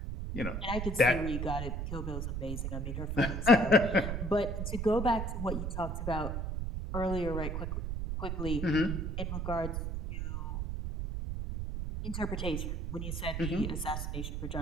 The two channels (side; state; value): right; noise; rumble, 3 dB below the sound